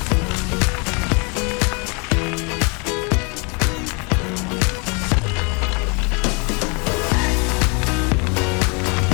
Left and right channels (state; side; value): quieter; right; 32.6 dB